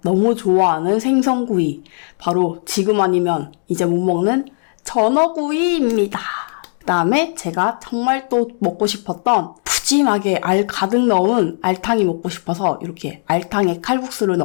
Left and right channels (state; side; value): silent; right; 60 dB below the other